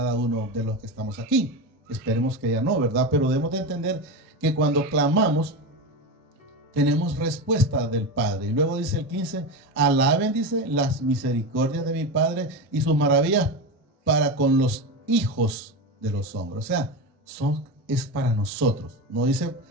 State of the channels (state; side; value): normal; both; correlation 0.20